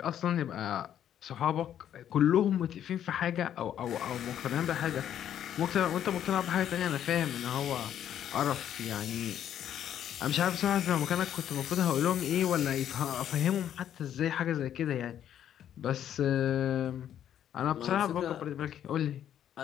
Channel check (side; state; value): right; quieter; 10.2 dB